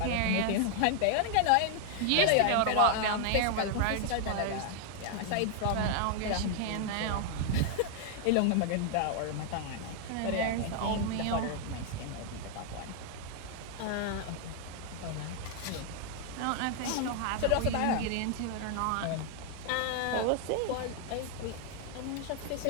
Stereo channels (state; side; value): different; both; correlation 0.00